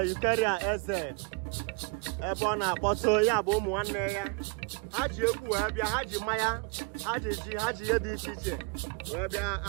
Eucheria eze ebe ọ na-akpọtụ ya bụ ụmụ nwanne ya. Ha ji egwu wee bịa, ha ji mmanya, ha ji ji, ha ji ihe dị iche iche wee bịa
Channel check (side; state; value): left; quieter; 30.3 dB